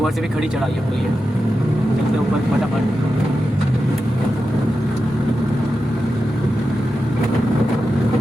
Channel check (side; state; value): both; normal; correlation 0.90